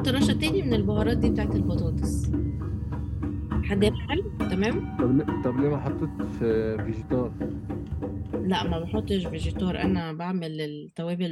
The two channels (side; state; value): both; identical; correlation 1.00